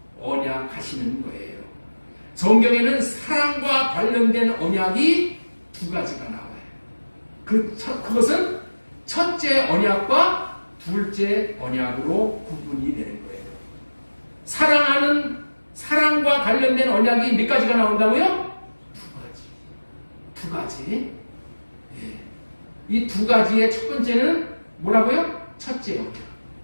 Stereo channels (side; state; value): both; inverted; correlation -1.00